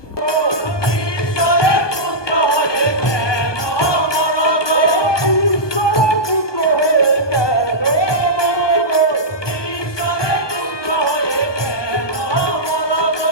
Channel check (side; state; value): right; late; 1.2 ms